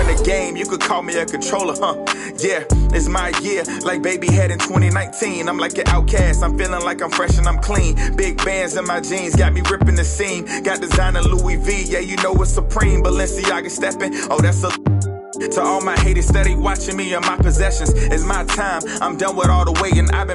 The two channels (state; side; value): identical; both; correlation 1.00